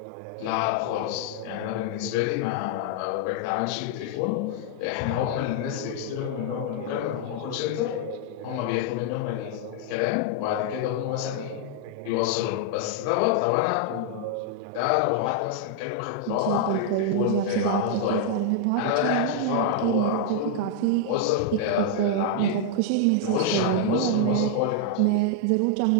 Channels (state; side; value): different; both; correlation 0.00